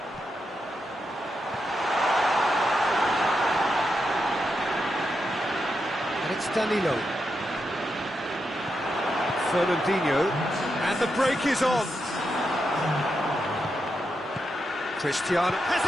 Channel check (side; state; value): both; normal; correlation 0.85